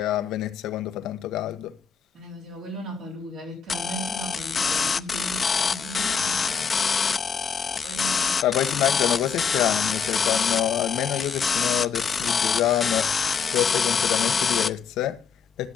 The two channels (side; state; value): right; quieter; 6.6 dB